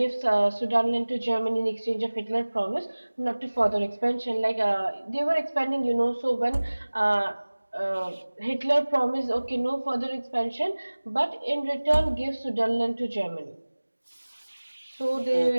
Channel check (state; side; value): inverted; both; correlation -1.00